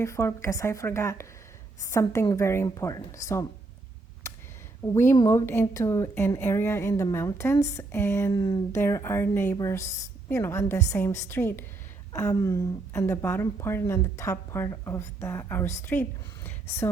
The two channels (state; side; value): quieter; left; 3.5 dB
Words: because I forgot something very important. So we moved into an area in the mountains, and there are neighbors, on the same street, on the bottom part and on the top part of our street.